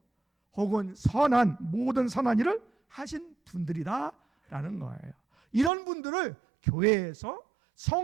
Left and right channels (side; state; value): left; drops out; at 5.7 s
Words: 혹은 모든 선한 일을 하신 분들이다라는 거예요. 이런 분들을 교회에서